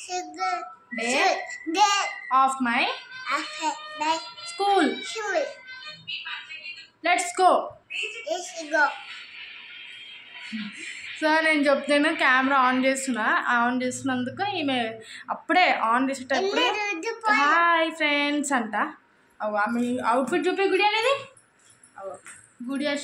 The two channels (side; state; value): both; identical; correlation 1.00